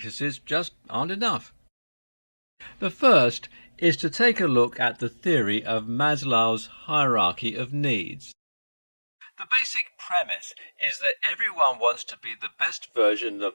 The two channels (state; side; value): inverted; both; correlation -1.00